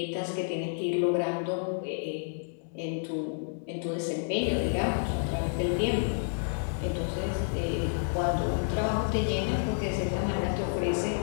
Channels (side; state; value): right; silent; digital silence